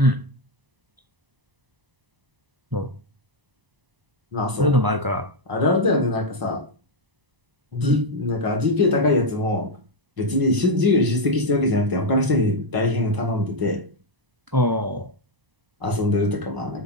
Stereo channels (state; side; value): late; left; 1.0 ms